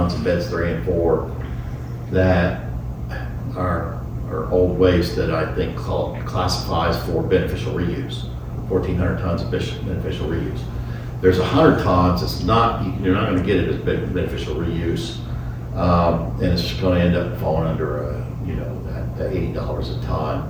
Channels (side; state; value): both; identical; correlation 1.00